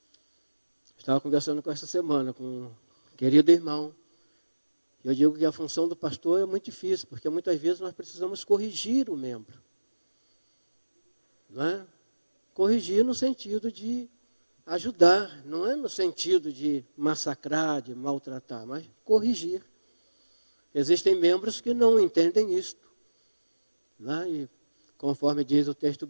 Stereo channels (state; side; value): inverted; both; correlation -1.00